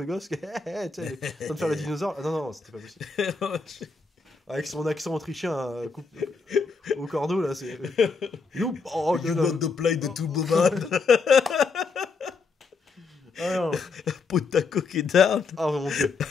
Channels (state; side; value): quieter; right; 4.5 dB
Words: gosse, tu sais, en train de faire le dinosaure. Ah, non, c'était pas possible. Avec son accent autrichien au cordeau, là, c'est... You want to play the Turboman. Potako qui down. Ah, mon dieu.